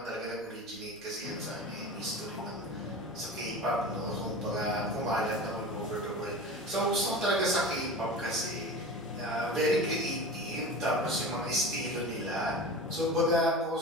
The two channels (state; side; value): noise; right; rumble, 29 dB below the sound